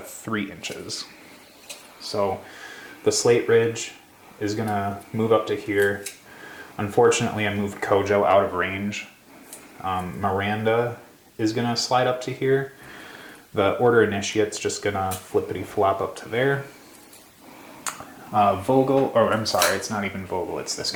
3 inches. So the Slate Ridge is gonna move up to here. Unfortunately, I moved Kojo out of range. Miranda is gonna slide up to here. The Order Initiate's just gonna flippity flop up to there. Vogel, or I'm sorry, it's not even Vogel, it's this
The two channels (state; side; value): identical; both; correlation 1.00